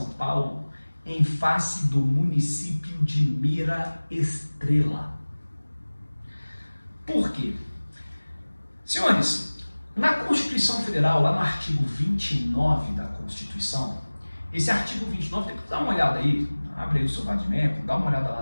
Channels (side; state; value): both; inverted; correlation -1.00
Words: Paulo em face do município de Mira Estrela. Por quê? Senhores, na Constituição Federal, lá no artigo 29 da Constituição, esse artigo 29, depois dá uma olhada aí, abre aí o seu Vadimeco, dá uma olhada